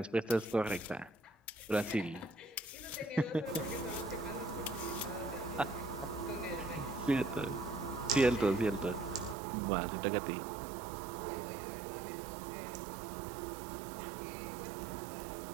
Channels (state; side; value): drops out; left; at 9.3 s